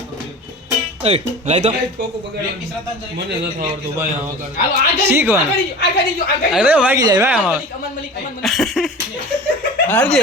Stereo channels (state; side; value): normal; both; correlation 0.36